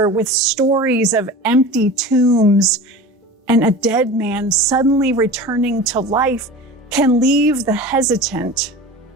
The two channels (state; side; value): normal; both; correlation 0.35